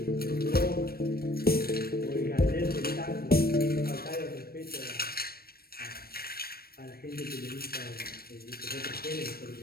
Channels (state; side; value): late; right; 0.44 ms